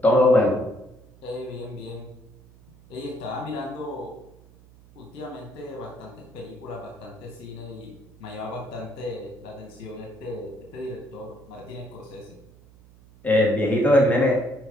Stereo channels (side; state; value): right; noise; hum, 24 dB below the sound